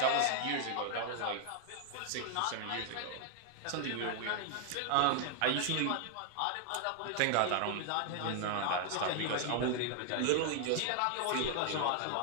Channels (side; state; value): both; different; correlation 0.00